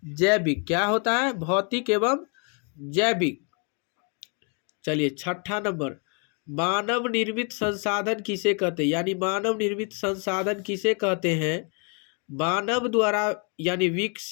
जैविक क्या होता है? भौतिक एवं जैविक। चलिए 6ठा नंबर, मानव निर्मित संसाधन किसे कहते हैं? यानी मानव निर्मित संसाधन किसे कहते हैं? मानव द्वारा यानी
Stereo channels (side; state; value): right; quieter; 38.2 dB